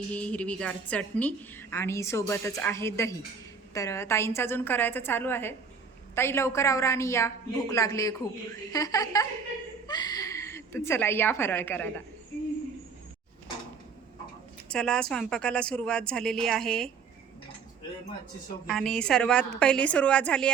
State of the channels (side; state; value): left; quieter; 5.7 dB